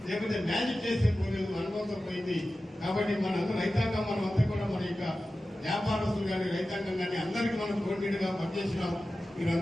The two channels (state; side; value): normal; both; correlation 0.94